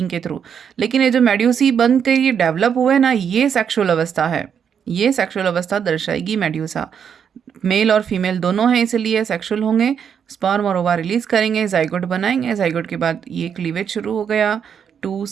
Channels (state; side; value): quieter; left; 7.6 dB